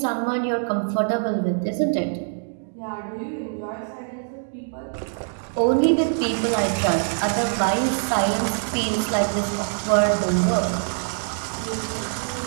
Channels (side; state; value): left; silent; digital silence